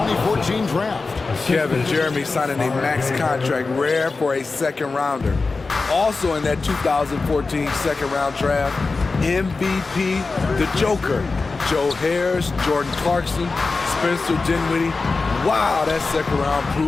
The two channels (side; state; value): right; quieter; 3.9 dB